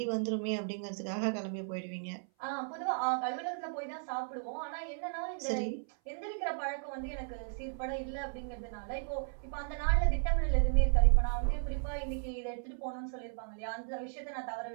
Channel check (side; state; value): left; silent; 54 dB below the other